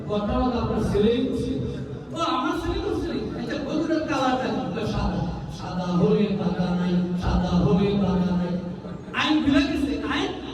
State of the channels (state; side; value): identical; both; correlation 1.00